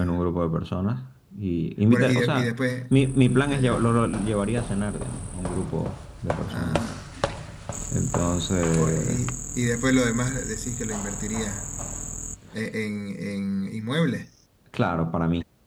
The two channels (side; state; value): both; identical; correlation 1.00